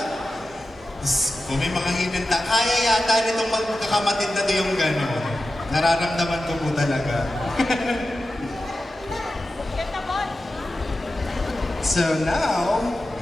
Kung may mga hidden ta, kaya yata nitong magkakamatid na to yung gano'n. Nararamdaman ko po talaga. So now,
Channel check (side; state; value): both; normal; correlation 0.92